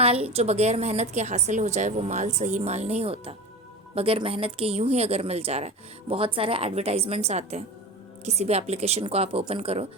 جو بغیر محنت کے حاصل ہو جائے وہ مال صحیح مال نہیں ہوتا. بغیر محنت کے یوں ہی اگر مل جا رہا ہے. بہت سارے ایڈورٹائزمنٹس آتے ہیں، کسی بھی اپلیکیشن کو آپ اوپن کرو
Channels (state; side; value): normal; both; correlation 0.29